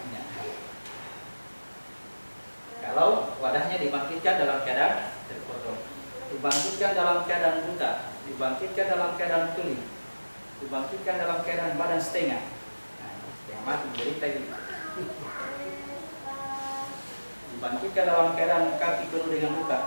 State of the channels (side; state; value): both; inverted; correlation -1.00